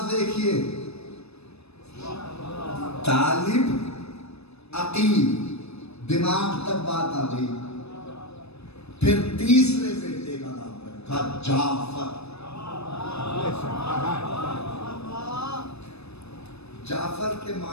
دیکھیے، طالب عقیل، دماغ تک بات آ گئی۔ پھر تیسرے بیٹے کا نام رکھا جعفر۔ جعفر کے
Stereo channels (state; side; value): late; right; 0.79 ms